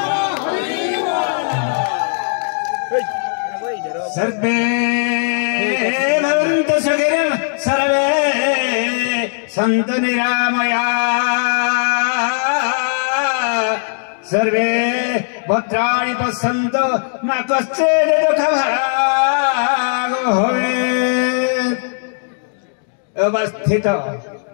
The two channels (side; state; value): right; silent; 68 dB below the other